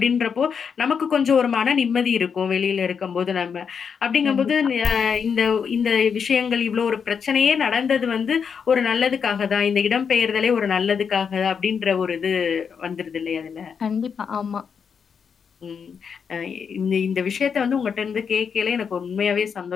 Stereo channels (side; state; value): right; quieter; 6.6 dB